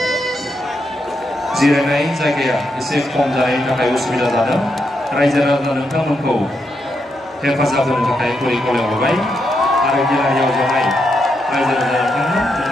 जिरायनाय जायगाया एसे खम जानायनि थाखाय उसुबिदा जादों रायजो राजा नोंथांमोनखौ हेफाजाब होनो थाखाय गुरै खावलायहरबाय आरो गेलेनायाव जनाय रायजो राजा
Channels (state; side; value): normal; both; correlation 0.82